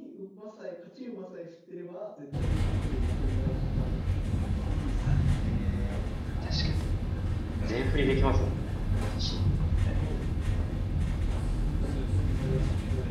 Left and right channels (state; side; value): identical; both; correlation 1.00